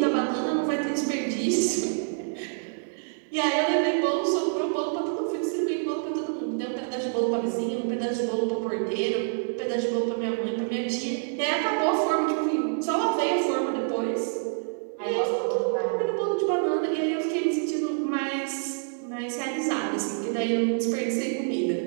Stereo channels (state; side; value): silent; left; digital silence